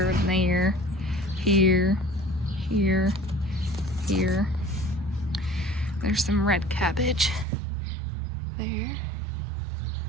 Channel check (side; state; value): left; drops out; at 7.5 s